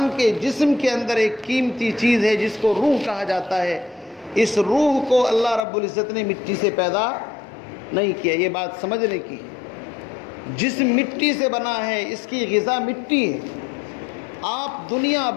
کے جسم کے اندر ایک قیمتی چیز ہے جس کو روح کہا جاتا ہے، اس روح کو اللہ رب العزت نے مٹی سے پیدا نہیں کیا۔ یہ بات سمجھنے کی، جسم مٹی سے بنا ہے، اس کی غذا مٹی ہے۔ آپ دنیا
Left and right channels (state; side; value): drops out; right; at 5.6 s